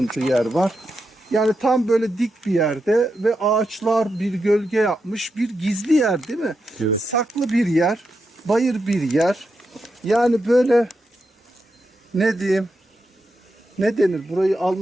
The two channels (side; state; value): both; normal; correlation 0.86